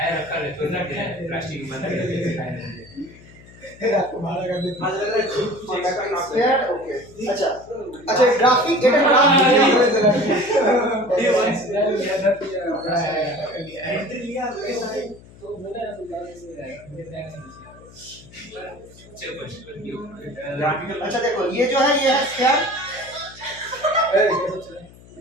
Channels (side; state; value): left; noise; hum, 22 dB below the sound